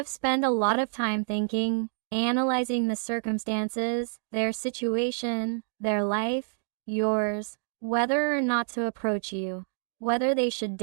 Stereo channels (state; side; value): silent; left; digital silence